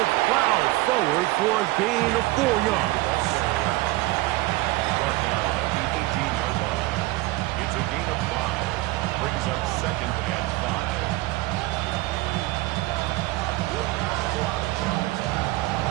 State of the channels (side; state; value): left; quieter; 19.6 dB